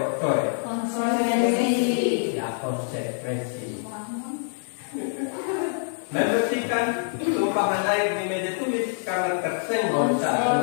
Konsekuensi. Ya, konsekuensi. Membersihkan tumpahan air di meja tulis karena tersenggol saat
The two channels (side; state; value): right; silent; 61 dB below the other